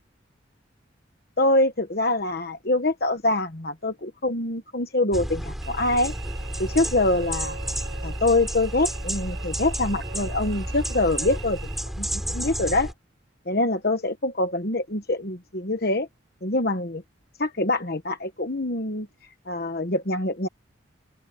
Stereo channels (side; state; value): both; normal; correlation -0.02